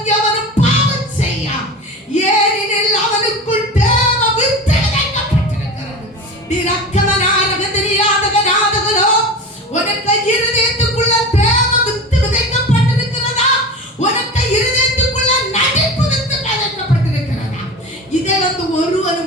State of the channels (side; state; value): both; normal; correlation 0.31